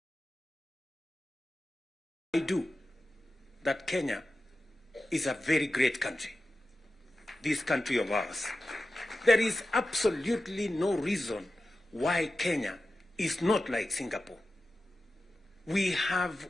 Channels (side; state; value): both; normal; correlation 0.93